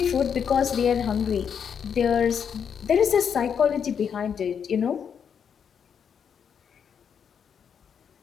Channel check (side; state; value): right; quieter; 7.4 dB